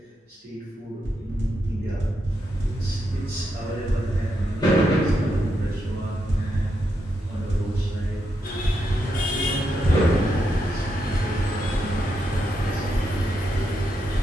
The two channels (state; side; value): normal; both; correlation 0.83